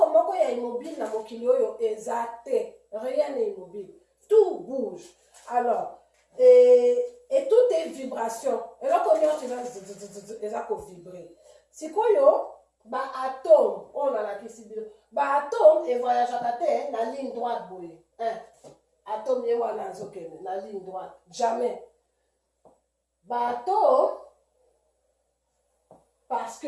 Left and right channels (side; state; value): both; identical; correlation 1.00